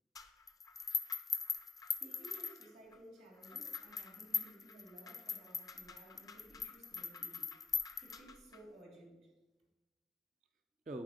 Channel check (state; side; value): quieter; right; 4.4 dB